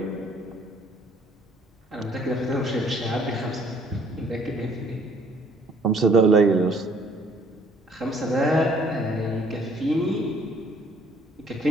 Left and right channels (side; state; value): both; normal; correlation 0.61